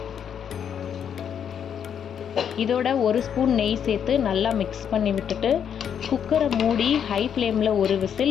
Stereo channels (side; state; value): right; quieter; 8.3 dB